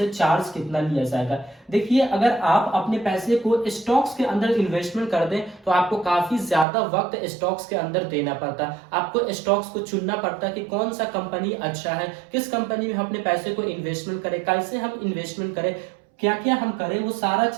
चार्ज कितना लिया जाएगा। देखिए, अगर आप अपने पैसे को स्टॉक्स के अंदर इन्वेस्टमेंट कर दें तो आपको काफी ज्यादा वक्त स्टॉक्स के अंदर देना पड़ता है। आपको स्टॉक्स को चुनना पड़ता है कि कौन सा कंपनी अच्छा है, किस कंपनी में हम अपने पैसे को इन्वेस्टमेंट करें, कैसे हम इन्वेस्टमेंट करें, क्या क्या हम करें, वो सारा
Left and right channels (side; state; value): left; drops out; at 6.7 s